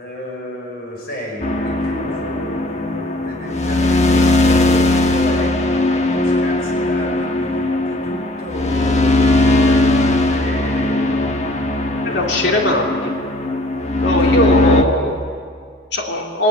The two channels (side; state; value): both; normal; correlation 0.54